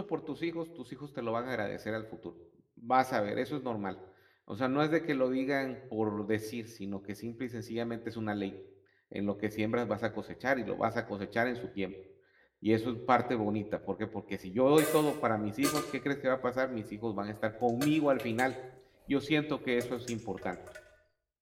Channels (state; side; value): identical; both; correlation 1.00